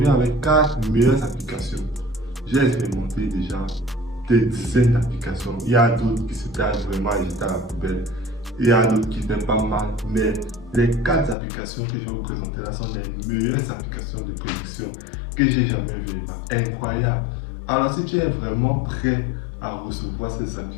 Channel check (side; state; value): right; drops out; at 11.4 s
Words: avec 4 meilleures applications. J'ai expérimenté déjà des dizaines d'applications. Il y a d'autres qui s'étaient vraiment jetées à la poubelle. Il y a d'autres qui étaient pas mal. Mais les 4 applications que je vais vous présenter là sont les meilleures applications de prédiction que j'ai jamais vues. Incroyable. Alors, si tu es vraiment prêt à recevoir ces